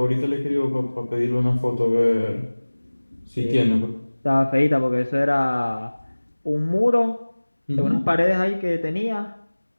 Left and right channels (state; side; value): inverted; both; correlation -1.00